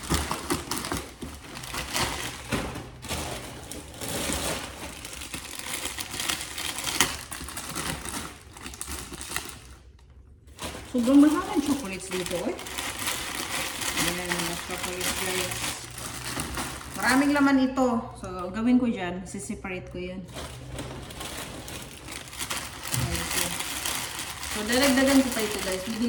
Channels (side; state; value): both; identical; correlation 1.00